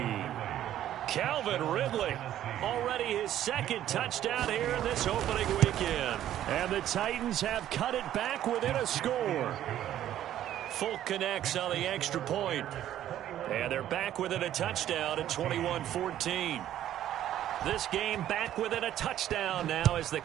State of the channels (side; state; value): left; quieter; 11.9 dB